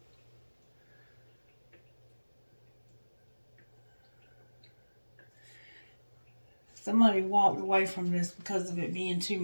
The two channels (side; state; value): both; inverted; correlation -1.00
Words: Somebody walked away from this because of it being too